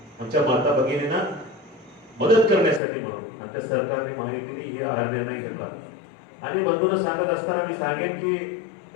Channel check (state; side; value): drops out; right; at 2.8 s